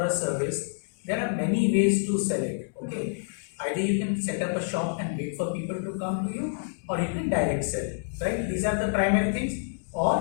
a service, there are many ways to sell it, okay? Either you can set up a shop and wait for people to come to you, or you can direct sell, right? These are the primary things.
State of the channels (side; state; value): right; silent; digital silence